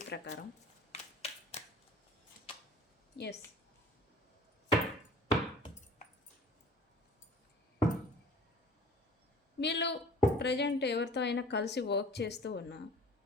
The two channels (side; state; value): both; normal; correlation 0.46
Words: ప్రకారం. ఎస్, వీళ్ళు ప్రజెంట్ ఎవరితో అయినా కలిసి వర్క్ చేస్తూ ఉన్నా